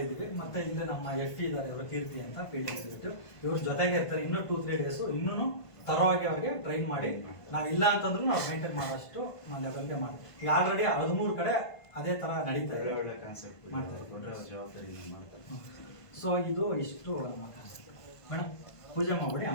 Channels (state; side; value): late; right; 1.5 ms